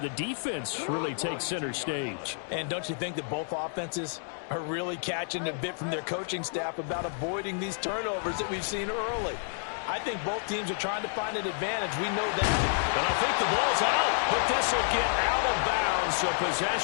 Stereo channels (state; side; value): silent; right; digital silence